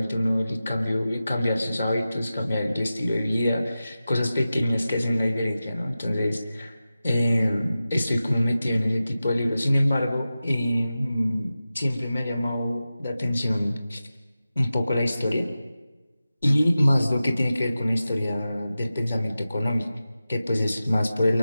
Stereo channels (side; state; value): both; inverted; correlation -0.94